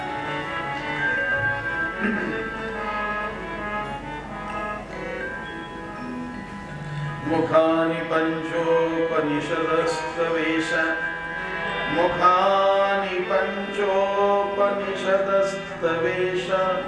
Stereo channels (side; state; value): both; identical; correlation 1.00